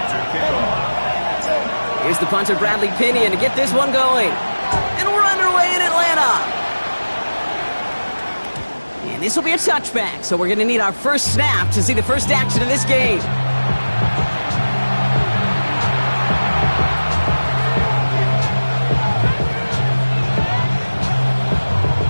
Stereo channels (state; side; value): inverted; both; correlation -1.00